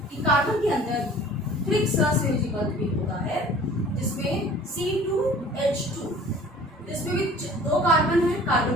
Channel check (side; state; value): both; normal; correlation 0.48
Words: कि कार्बन के अंदर त्रिक सहसंयोजी बंध भी होता है, जिसमें C2H2, जिसमें भी 2 कार्बन है,